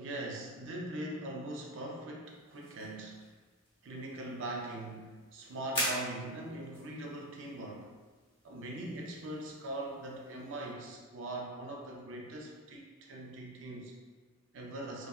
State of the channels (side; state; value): both; normal; correlation 0.14